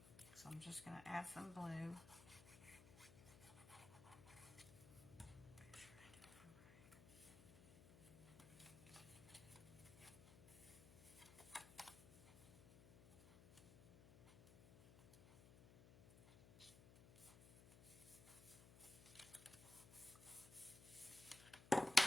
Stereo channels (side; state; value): left; noise; hum, 18 dB below the sound